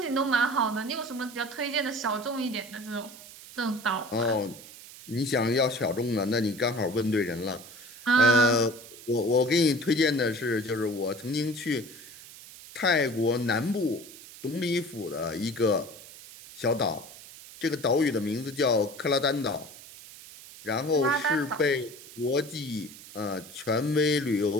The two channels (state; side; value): noise; right; hiss, 17 dB below the sound